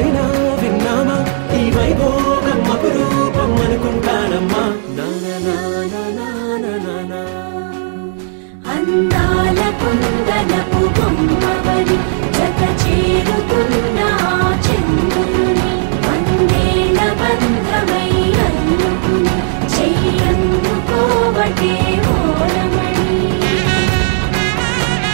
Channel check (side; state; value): left; silent; digital silence